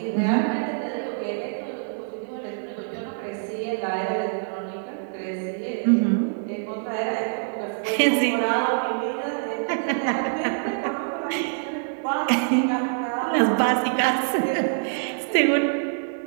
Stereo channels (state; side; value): silent; left; digital silence